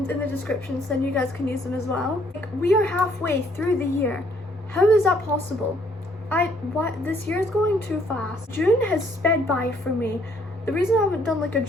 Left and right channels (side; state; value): both; normal; correlation 0.65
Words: in the description so then you guys can use them as well. We are halfway through the year. How is that possible? This year is going too fast. June has sped by for me. The reason I haven't done like a